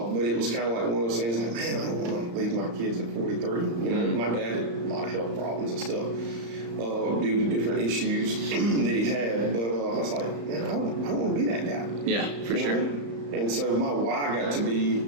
it was kind of like one of those things like, man, I don't want to leave my kids at 43. My dad had a lot of health problems and stuff due to different issues that he had. But I was like, man, I don't want to be that guy. Yeah, for sure. And so my why got to be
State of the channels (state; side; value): late; left; 35 ms